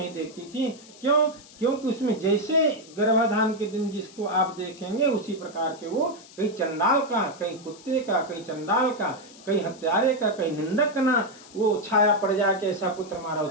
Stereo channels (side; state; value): left; noise; hiss, 21 dB below the sound